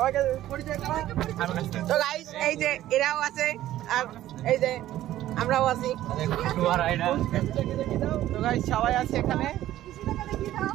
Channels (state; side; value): quieter; left; 13.7 dB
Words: পরিচয় করা। তো গাইস এই যে এরাও আছে আর এই যে আমরাও আছি। তো গাইস সবাই আছে এখানে।